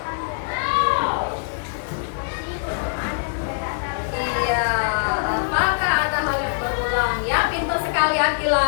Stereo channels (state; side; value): silent; right; 64 dB below the other